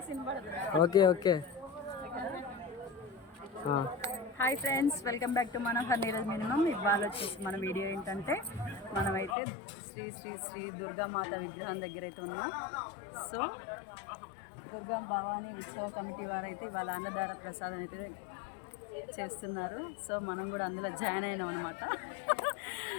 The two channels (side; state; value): right; drops out; at 9.3 s